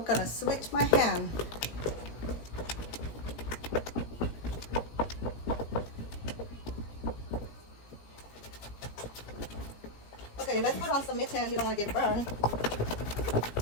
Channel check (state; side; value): late; right; 17 ms